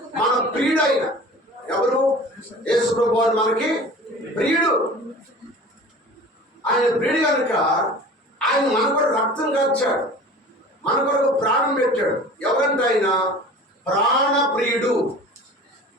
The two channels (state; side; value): normal; both; correlation 0.41